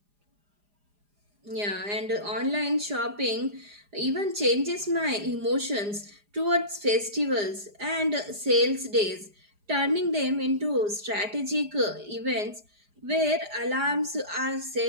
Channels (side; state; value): left; late; 4.9 ms